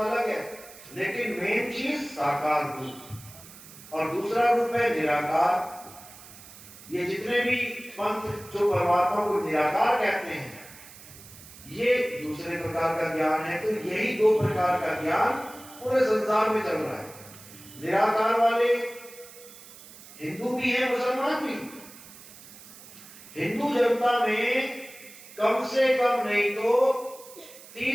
है, लेकिन मेन चीज साकार रूप। और दूसरा रूप है निराकार। ये जितने भी पंथ जो परमात्मा को निराकार कहते हैं, ये दूसरे प्रकार का ज्ञान है। तो यही दो प्रकार का ज्ञान पूरे संसार में चल रहा है। निराकार वाले हिंदू भी हैं, मुसलमान भी। हिंदू जनता में कम से कम नहीं तो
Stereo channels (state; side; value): noise; right; hiss, 19 dB below the sound